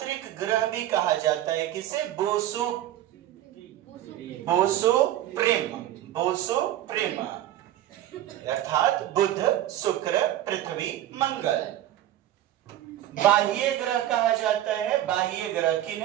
ग्रह भी कहा जाता है। किसे? बोसोप्रिम, अर्थात बुध, शुक्र, पृथ्वी, मंगल। बाह्य ग्रह कहा जाता है। बाह्य ग्रह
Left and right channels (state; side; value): quieter; left; 12.9 dB